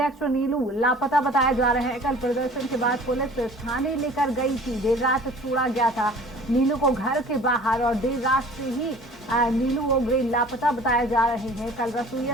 नीलू लापता बताए जा रहे हैं। कल प्रदर्शन के बाद पुलिस थाने लेकर गई थी। देर रात छोड़ा गया था नीलू को घर के बाहर और देर रात से ही नीलू ओग्रे लापता बताए जा रहे हैं। कल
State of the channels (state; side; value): normal; both; correlation 0.47